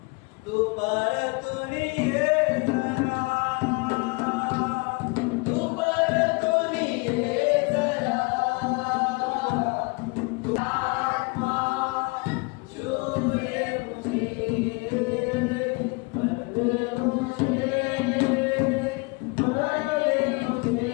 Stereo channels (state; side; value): quieter; right; 28.9 dB